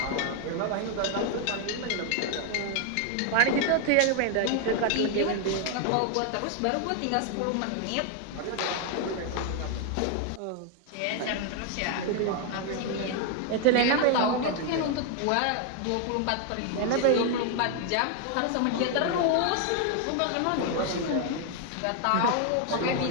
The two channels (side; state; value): both; different; correlation 0.00